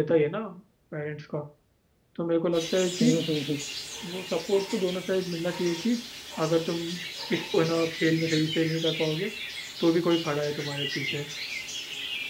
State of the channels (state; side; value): identical; both; correlation 1.00